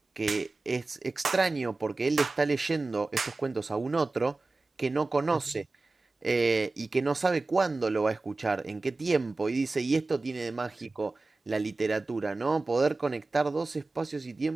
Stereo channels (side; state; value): left; quieter; 3.4 dB